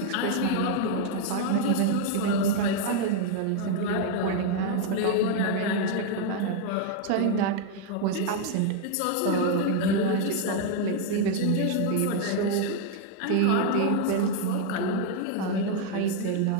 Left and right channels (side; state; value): both; different; correlation 0.00